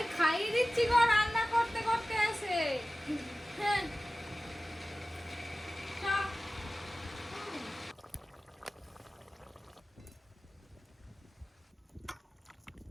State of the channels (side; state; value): both; normal; correlation 0.96